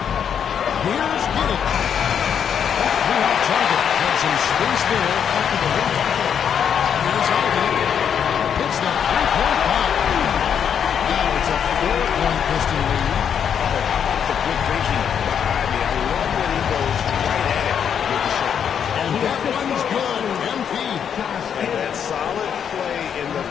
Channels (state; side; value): quieter; right; 8.1 dB